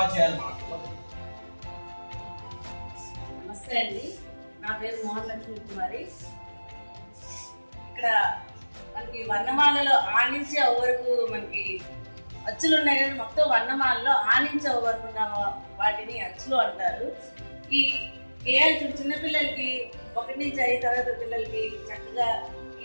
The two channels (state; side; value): inverted; both; correlation -1.00